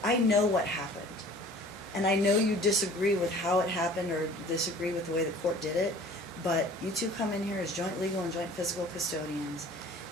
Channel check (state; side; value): normal; both; correlation 0.47